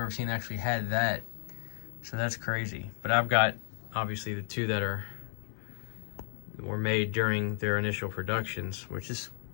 seen, actually had that. So that's crazy. But I've got, obviously, the two that were made during their initial productions, which is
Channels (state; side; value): silent; right; digital silence